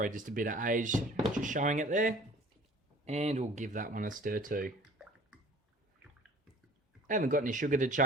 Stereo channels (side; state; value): both; normal; correlation 0.49